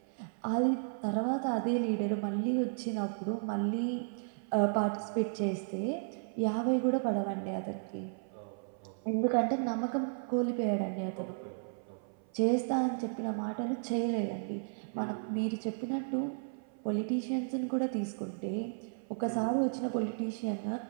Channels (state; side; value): silent; left; 55 dB below the other